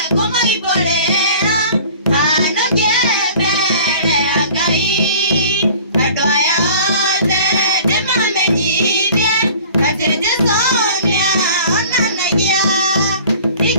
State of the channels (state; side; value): inverted; both; correlation -0.46